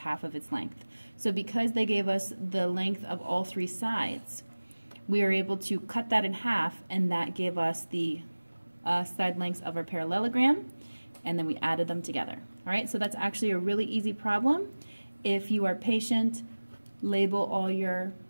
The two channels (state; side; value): inverted; both; correlation -1.00